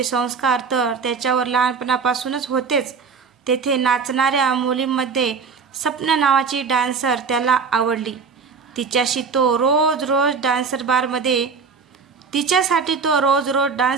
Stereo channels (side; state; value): left; quieter; 5.4 dB